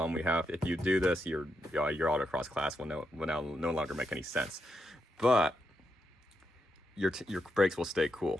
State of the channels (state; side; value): normal; both; correlation 0.83